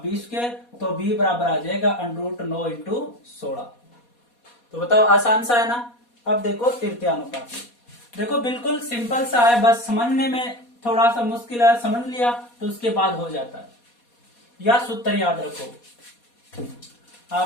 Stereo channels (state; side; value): late; right; 4.2 ms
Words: 20 स्क्वायर, तो b बराबर आ जाएगा अंडर रूट 9 इंटू 16। तो बताओ आसान सा है ना। अब देखो तृतीय अनुपाती, देखो बिल्कुल सिंपल सा है, बस समझने में थोड़ा सा मुश्किल है, समझ लिया तो उसके बाद हो जाता है। या सूत्र याद रखो,